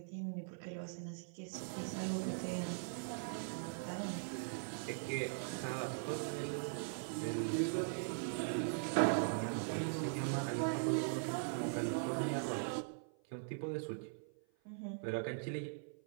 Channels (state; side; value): silent; left; 50 dB below the other